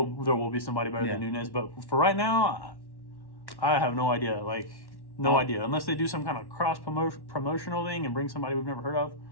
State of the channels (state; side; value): late; right; 1.1 ms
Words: will be somebody better than Nunes. But for right now, I have no idea. Like no idea, unless they do some kind of cross promotional thing and bring somebody we've never heard of.